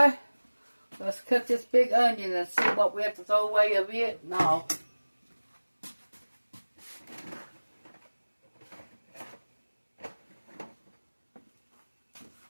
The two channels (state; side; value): inverted; both; correlation -1.00